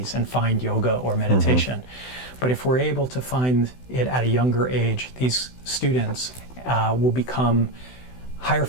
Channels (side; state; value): right; late; 16 ms